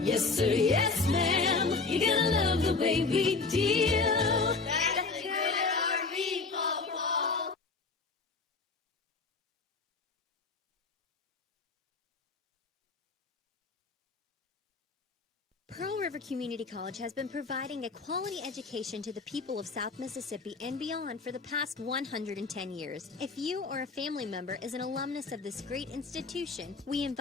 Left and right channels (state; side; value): quieter; right; 4.1 dB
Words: Yes, sir. Yes, ma'am. You're gonna love the way we deal. That's a good RV, Pawpaw. Pearl River Community College has been providing a quality education to the people of South Mississippi and beyond for the past 110 years. If you or a family member is an alumnus of this great institution, we